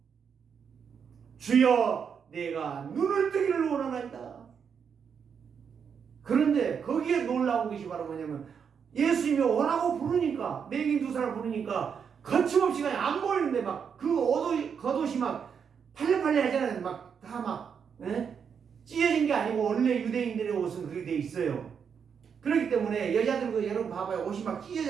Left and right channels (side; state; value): left; quieter; 6.9 dB